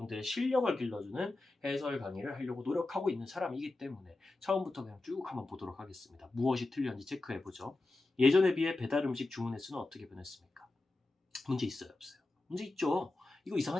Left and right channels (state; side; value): quieter; right; 3.0 dB